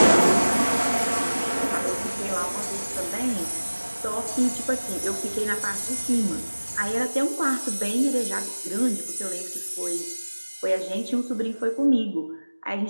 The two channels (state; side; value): inverted; both; correlation -1.00